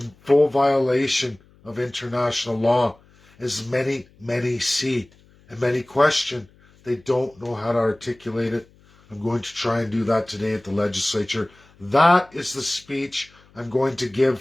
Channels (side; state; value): left; noise; hum, 29 dB below the sound